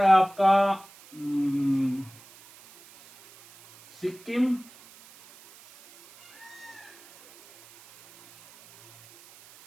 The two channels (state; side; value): noise; right; hiss, 24 dB below the sound